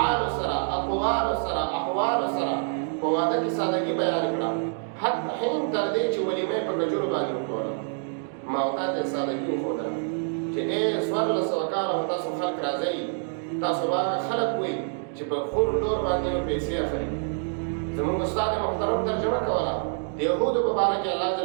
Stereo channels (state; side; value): silent; left; 61 dB below the other